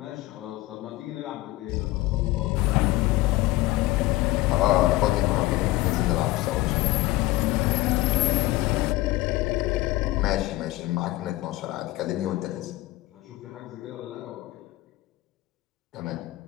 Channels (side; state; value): right; quieter; 18.4 dB